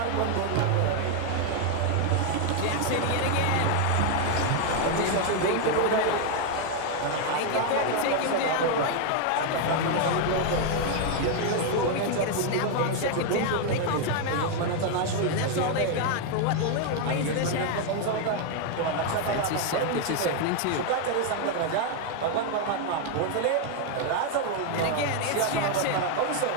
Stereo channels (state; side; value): different; both; correlation 0.01